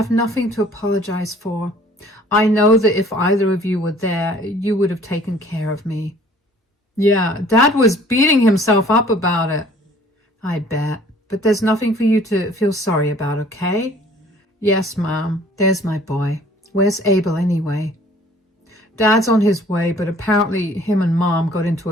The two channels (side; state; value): both; normal; correlation 0.54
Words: nothing to apologize for. I know that if either of you were there, you would have taken care of me. Yeah, Dad was beating himself up about it. I bet. But there's nothing for you to feel sorry about, okay? Yes, Mom. There's my boy. Where's Abel anyway? Dad's on his way, but apparently him and Mom got into